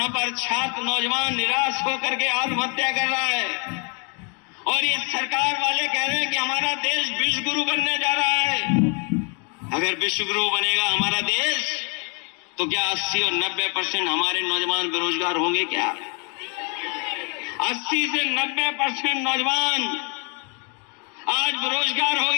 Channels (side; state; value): right; quieter; 36.1 dB